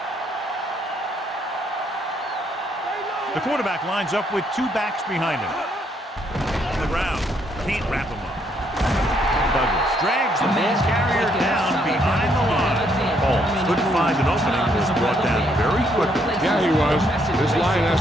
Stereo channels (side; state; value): both; normal; correlation 0.71